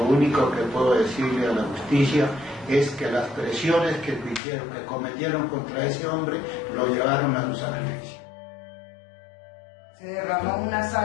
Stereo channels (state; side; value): drops out; right; at 4.4 s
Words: único que puedo decirle a la justicia es que las presiones que cometieron contra ese hombre lo llevaron a su sacrificio. Se derrama una